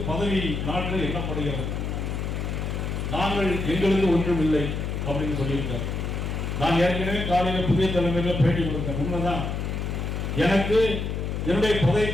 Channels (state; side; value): noise; left; hum, 3 dB below the sound